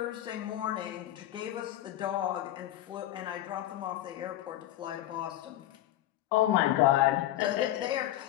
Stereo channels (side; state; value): right; quieter; 13.9 dB